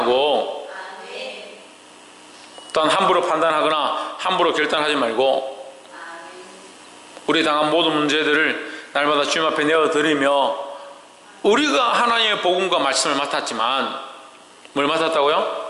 또한 함부로 판단하거나 함부로 결단하지 말고 우리 당한 모든 문제들을 날마다 주님 앞에 내어드리며 우리가 하나님의 복음과 말씀을 맡았지만 뭘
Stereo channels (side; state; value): both; identical; correlation 1.00